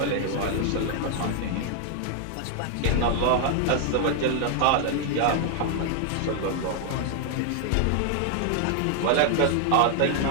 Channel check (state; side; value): different; both; correlation 0.00